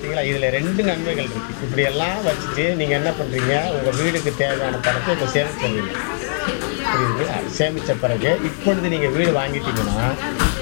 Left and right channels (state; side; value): silent; right; digital silence